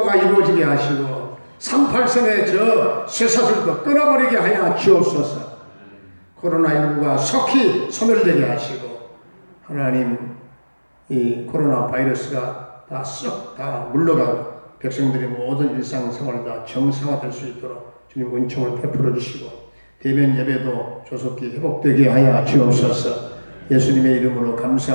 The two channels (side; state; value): both; inverted; correlation -1.00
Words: 이루어지게 하시고 38선의 저 쇠사슬도 끊어버리게 하여 주옵소서. 코로나19가 속히 소멸되게 하시고 하나님, 이 코로나 바이러스가 다 썩 다 물러가고 백성들의 모든 일상생활이 다 정상화될 수 있도록 주님 은총을 베풀어 주시고 대면 예배도 조속히 회복되게 하여 주옵소서. 예수님의 이름으로